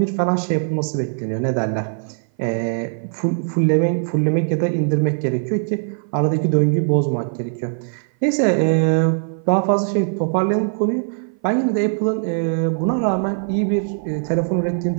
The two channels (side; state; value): left; silent; 57 dB below the other